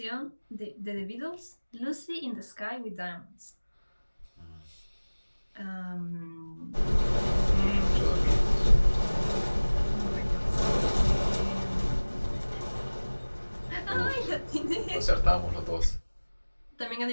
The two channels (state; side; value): inverted; both; correlation -1.00